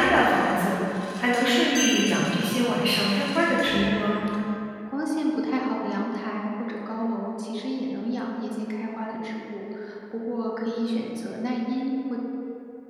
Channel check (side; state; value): both; identical; correlation 1.00